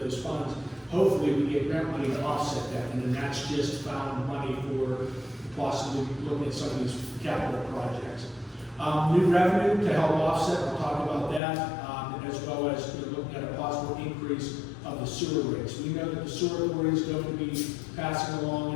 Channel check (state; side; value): drops out; right; at 11.4 s